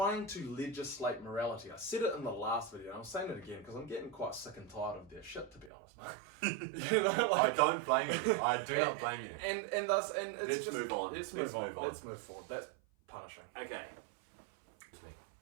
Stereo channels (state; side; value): drops out; left; at 5.7 s